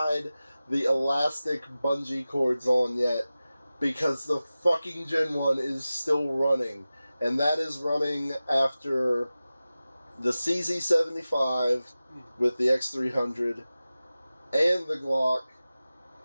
the elastic bungee cords on yet, because the fucking Gen 1 is still running. And that is running after the CZ75 with the X300 and the Glock.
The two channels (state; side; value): inverted; both; correlation -0.96